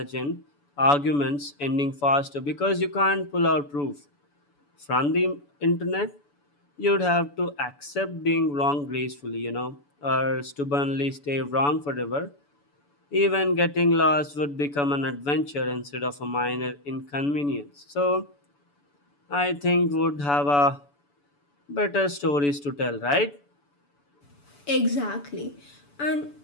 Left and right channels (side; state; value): right; late; 7.0 ms